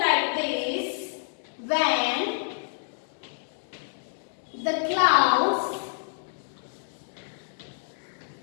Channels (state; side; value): silent; right; digital silence